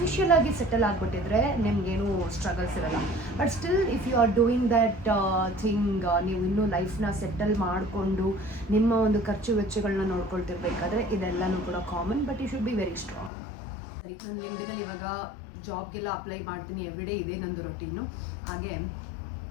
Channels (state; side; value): drops out; right; at 13.3 s